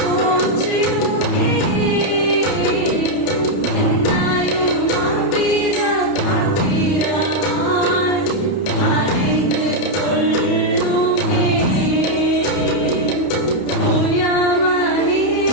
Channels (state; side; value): late; right; 31 ms